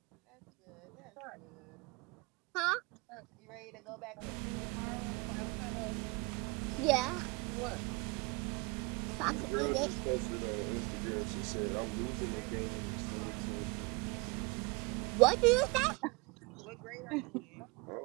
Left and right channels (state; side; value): quieter; left; 27.3 dB